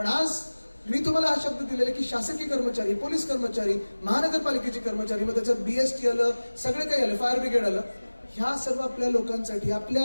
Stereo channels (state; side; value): inverted; both; correlation -1.00